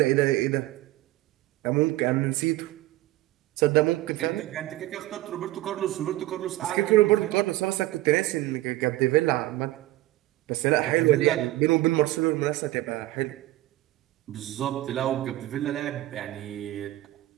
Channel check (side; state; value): left; quieter; 17.2 dB